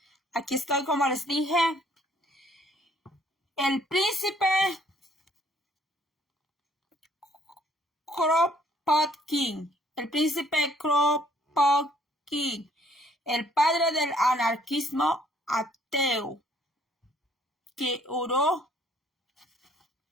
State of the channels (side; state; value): both; normal; correlation 0.62